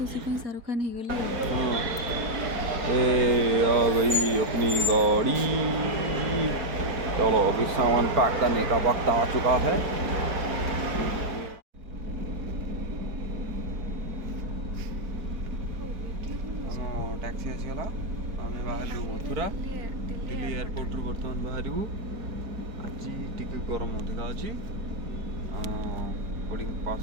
पे शाहरुख खान हो गली। आ गई अपनी गाड़ी। चलो अभी सामान पैक करने का वक्त आ चुका है। टैक्सी आसीगला, आम बाहर मथुरा दिल्ली एयरपोर्ट बर्तमान बाहर। आज टी गरम अधिका अच्छी बोर्डिंग पास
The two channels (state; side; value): late; left; 4.6 ms